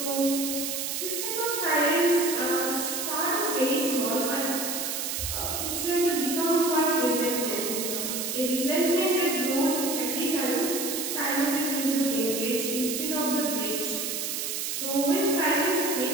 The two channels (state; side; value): noise; right; hiss, 2 dB below the sound